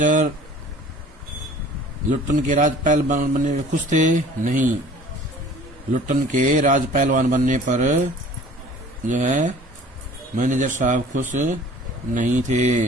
लुट्टन के राज पहलवान बनने में खुश थे? नहीं। लुट्टन के राज पहलवान बनने पर जो है मैनेजर साहब खुश नहीं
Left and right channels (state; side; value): normal; both; correlation 0.48